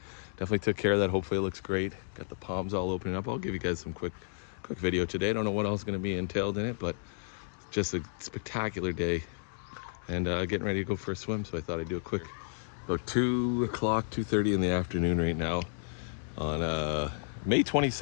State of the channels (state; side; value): silent; right; digital silence